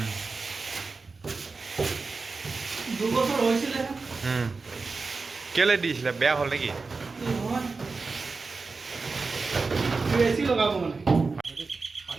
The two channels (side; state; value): left; quieter; 4.2 dB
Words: দুবছৰ হৈছিলে কেলে দিছিলে বেয়া হ'ল নেকি এচি লগাব মানে